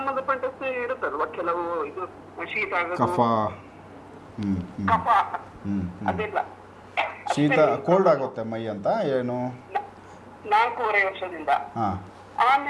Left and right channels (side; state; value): both; identical; correlation 1.00